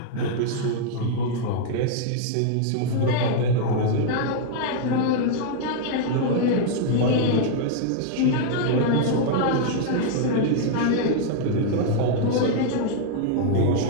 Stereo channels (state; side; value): different; both; correlation 0.00